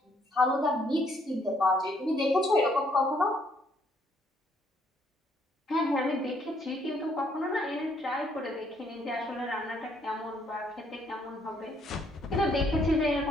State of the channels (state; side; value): normal; both; correlation 0.69